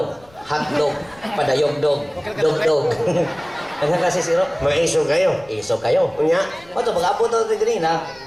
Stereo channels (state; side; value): noise; left; rumble, 27 dB below the sound